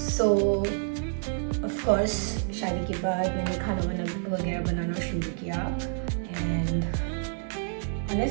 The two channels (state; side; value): silent; left; digital silence